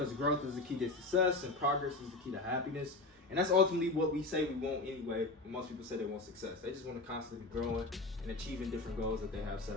growth is the key to success, and progress is the key to happiness. And that's ultimately what we say we want anyway. When most people say they want success, they just want to constantly be growing and achieving different goals that they have set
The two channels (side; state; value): right; quieter; 3.1 dB